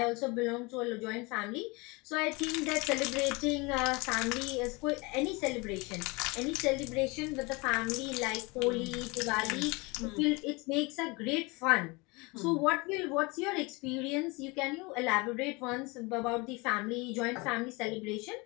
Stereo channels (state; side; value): quieter; right; 26.2 dB